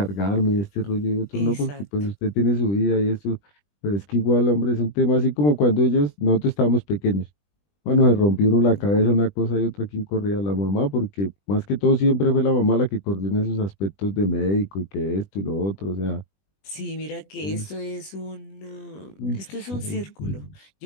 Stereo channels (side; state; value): right; late; 20 ms